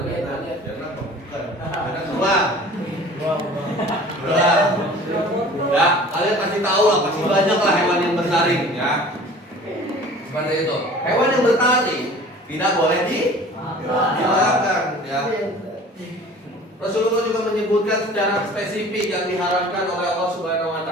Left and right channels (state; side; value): normal; both; correlation 0.45